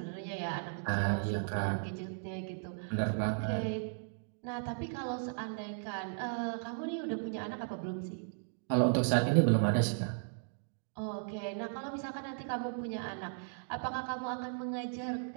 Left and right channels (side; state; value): left; silent; digital silence